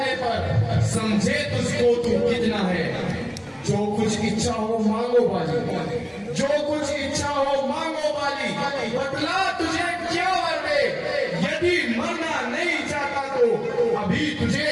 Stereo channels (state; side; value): identical; both; correlation 1.00